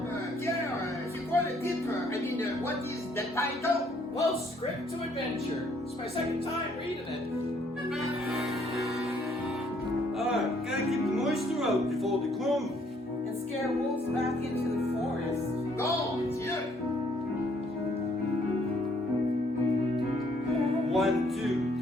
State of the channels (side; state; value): both; normal; correlation 0.65